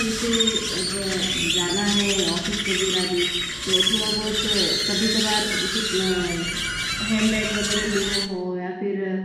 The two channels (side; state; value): both; identical; correlation 1.00